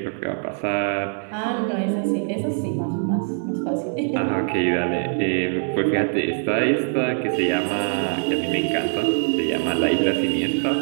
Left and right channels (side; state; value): left; silent; 56 dB below the other